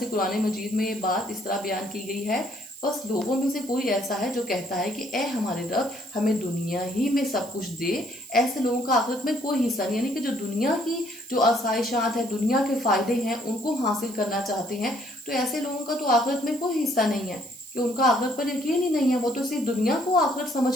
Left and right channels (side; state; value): right; noise; hiss, 18 dB below the sound